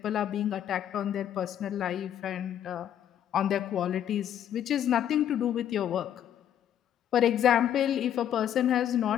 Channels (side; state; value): right; quieter; 10.2 dB